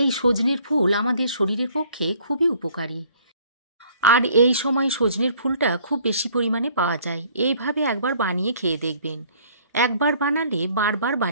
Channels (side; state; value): both; inverted; correlation -0.58